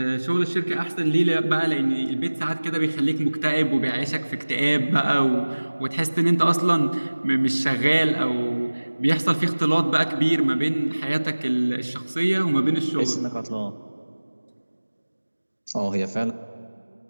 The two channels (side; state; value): both; inverted; correlation -1.00